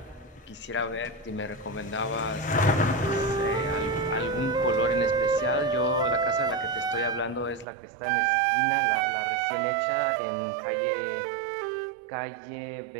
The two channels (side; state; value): left; drops out; at 7.7 s